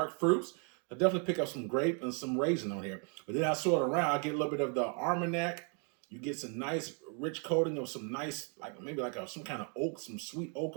fruits. I definitely pick up some grape and some raisin on here. But then I sort it around, I get a little bit of the Armagnac. You get some nice rich coating of some nice, maybe some kind of oak, some sweet oak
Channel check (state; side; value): quieter; left; 39.5 dB